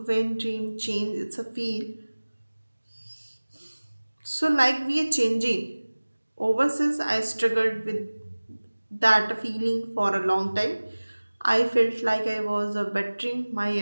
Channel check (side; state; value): both; inverted; correlation -1.00